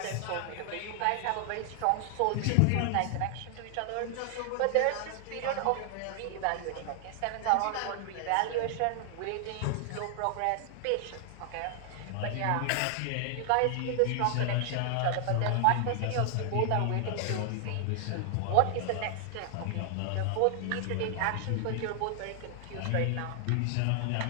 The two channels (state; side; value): different; both; correlation 0.00